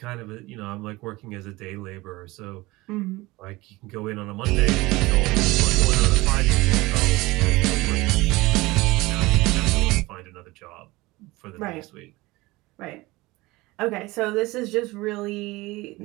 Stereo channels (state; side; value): quieter; left; 21.0 dB